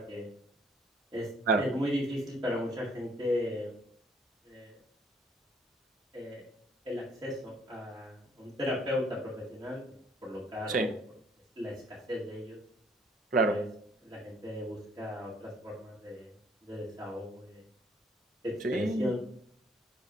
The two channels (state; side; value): normal; both; correlation 0.62